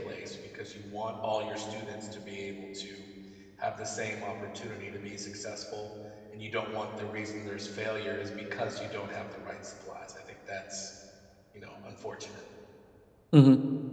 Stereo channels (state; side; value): identical; both; correlation 1.00